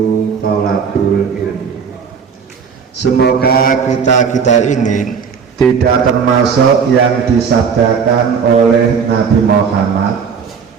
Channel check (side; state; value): left; quieter; 6.4 dB